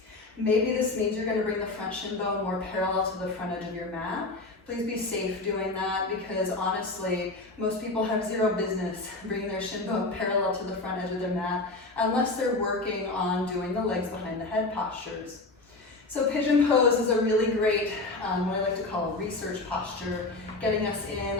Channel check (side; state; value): right; quieter; 3.2 dB